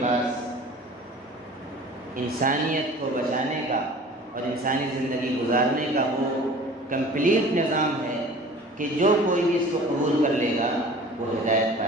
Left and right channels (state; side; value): normal; both; correlation 0.44